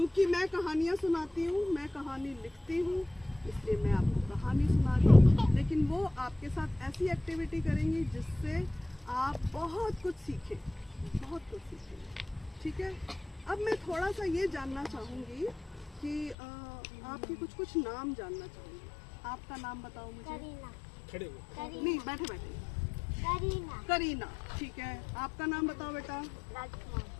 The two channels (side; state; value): right; drops out; at 16.4 s